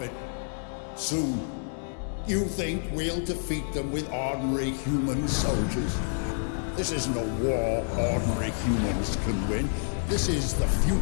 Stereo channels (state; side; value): silent; right; digital silence